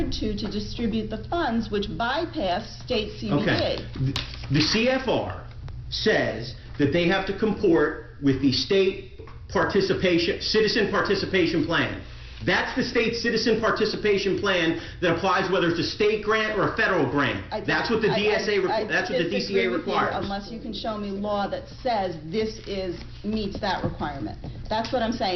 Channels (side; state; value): both; identical; correlation 1.00